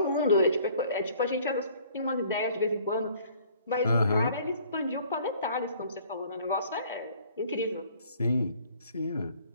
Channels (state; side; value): inverted; both; correlation -0.56